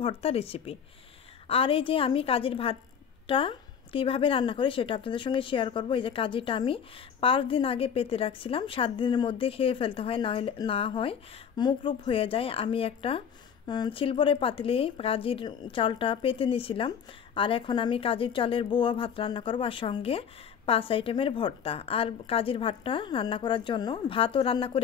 ভর্তা রেসিপি। আর এই যে আমি কাজির ভাতটা কীভাবে রান্না করি সেটা আপনাদের সঙ্গে শেয়ার করব। এই যে কাজিটা আমি 5 দিন আগে পেতে রাখছিলাম, 7 দিনের মধ্যে খেয়ে ফেলতে হয়, না হয় মুখরূপ হয়ে যায়। আমি একটা সিলভারের পাতিলে কাজির চালটা পেতে নিয়েছিলাম। আর এখন আমি কাজির চালের বোয়া ভাত রান্না করব, আর সঙ্গে 5 আইটেমের ভর্তা। আর কাজির ভাতটা রান্না করার জন্য ভাতও রান্না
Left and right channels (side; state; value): right; quieter; 7.6 dB